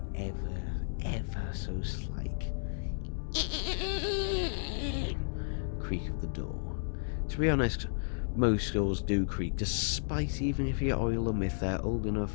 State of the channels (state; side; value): silent; right; digital silence